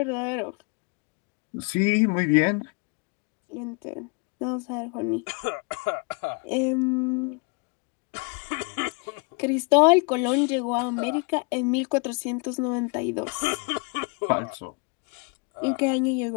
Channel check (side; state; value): right; quieter; 33.6 dB